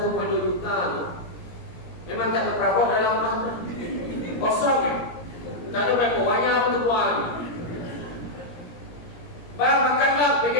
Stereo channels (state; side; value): late; right; 17 ms